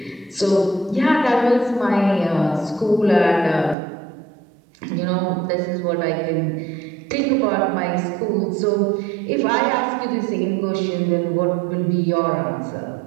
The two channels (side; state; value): left; drops out; at 3.8 s